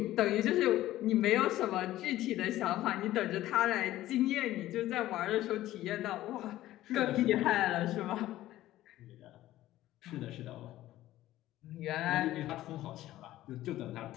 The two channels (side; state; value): right; quieter; 14.8 dB